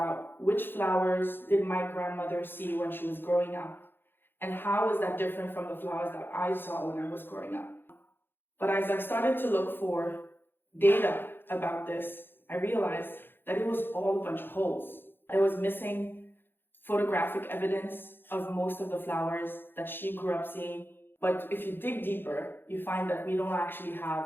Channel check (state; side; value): late; right; 0.10 ms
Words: which flowers did my grandmother see when she was growing up, and how is that different from the flowers that I saw when I was growing up. But as I started to look for data about this, I realized that it was all a bunch of holes. There was missing photographic evidence of most of the flowers that she grew up seeing. But if you dig deeper, you find that we don't actually